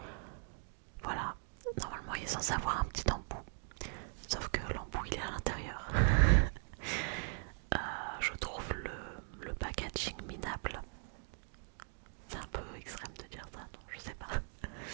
Voilà, normalement il est censé avoir un petit embout, sauf que l'embout il est à l'intérieur. Je trouve le packaging minable. C'est un peu extrême de dire ça, non, je sais pas.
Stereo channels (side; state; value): left; silent; 51 dB below the other